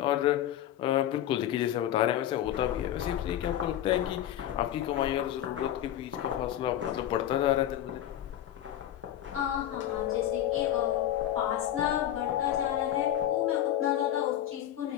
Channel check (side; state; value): right; quieter; 11.8 dB